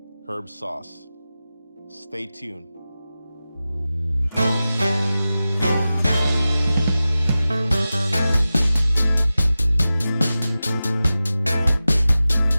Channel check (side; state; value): both; inverted; correlation -0.95